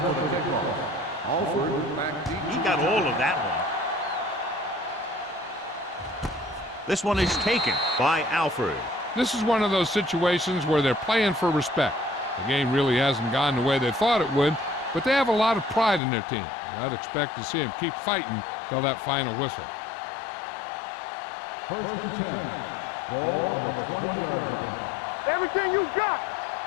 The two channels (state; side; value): drops out; right; at 16.0 s